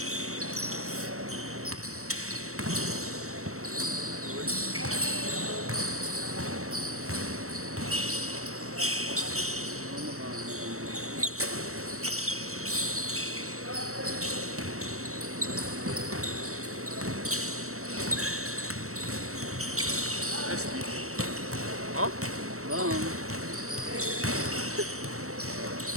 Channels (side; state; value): left; late; 0.64 ms